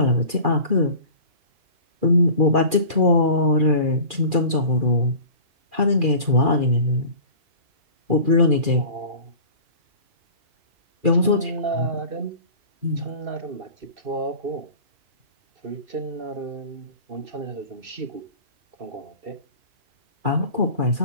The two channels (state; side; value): late; left; 2.4 ms